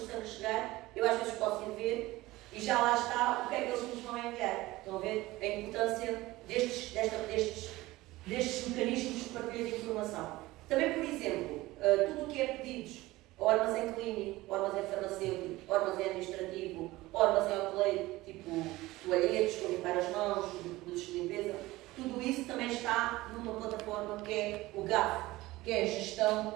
sangue chegar, eu às vezes posso ir ver e já lá está o que é que eles nos vão enviar. Estão a ver a importância destes mecanismos de partilha de informação. Também, por exemplo, tudo o que é pedidos ao armazém clínico, ao armazém farmacêutico, ao armazém administrativo, ao armazém hoteleiro, tipo toalhetes, para limpar as mãos, produtos de limpeza, tudo isso também está numa plataforma que é o GAF, que é a Gestão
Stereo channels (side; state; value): left; quieter; 18.7 dB